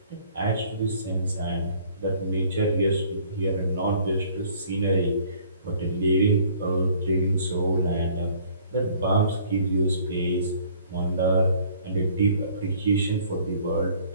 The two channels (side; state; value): both; inverted; correlation -0.56